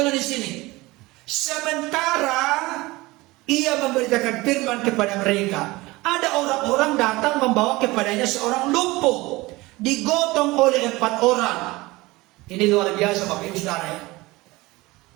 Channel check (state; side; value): quieter; left; 21.1 dB